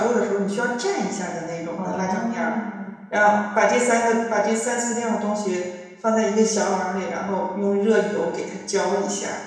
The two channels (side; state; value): both; identical; correlation 1.00